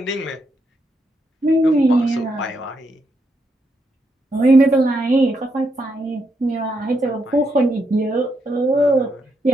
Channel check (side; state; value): both; normal; correlation 0.79